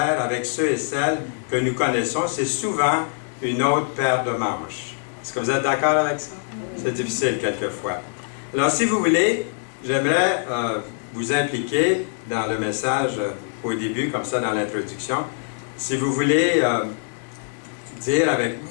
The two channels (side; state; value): right; silent; 63 dB below the other